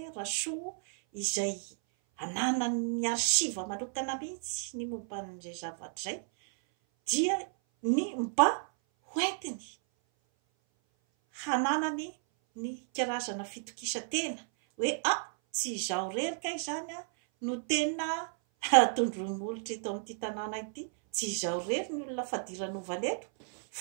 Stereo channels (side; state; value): left; silent; 56 dB below the other